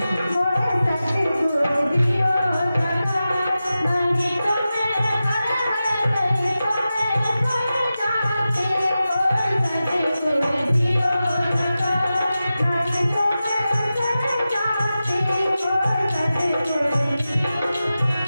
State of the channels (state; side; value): inverted; both; correlation -0.94